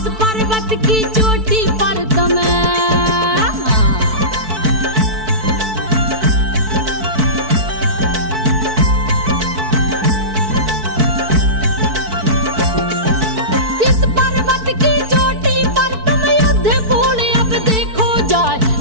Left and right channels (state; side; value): late; left; 4.6 ms